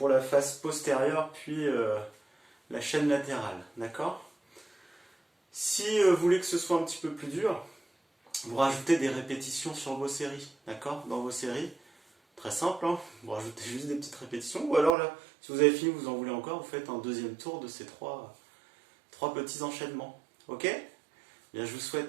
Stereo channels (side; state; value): left; drops out; at 14.9 s